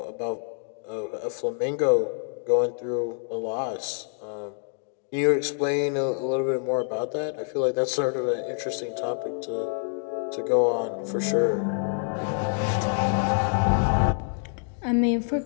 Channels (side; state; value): right; silent; digital silence